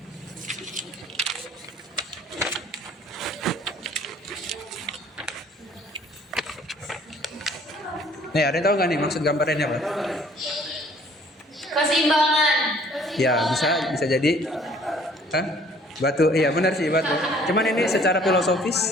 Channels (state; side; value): normal; both; correlation 0.56